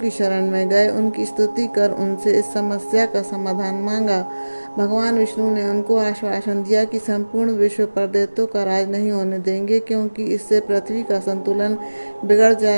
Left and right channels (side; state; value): both; inverted; correlation -1.00